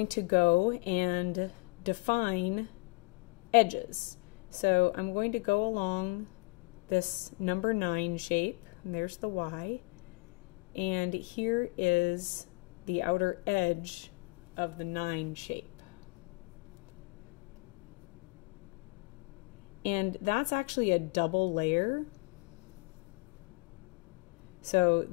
to go and define edges. So I'm going to go along this number 9 shape, and there's the Y, and here is the outer edge of the 9 shape. And that's actually a double layer. So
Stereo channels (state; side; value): quieter; right; 28.6 dB